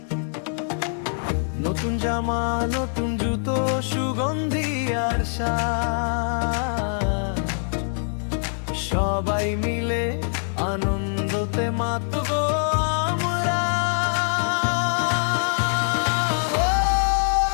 নতুন জামা, নতুন জুতো, সুগন্ধি আর সাজ, সবাই মিলে আনন্দতে মাতবো আমরা।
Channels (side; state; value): right; silent; digital silence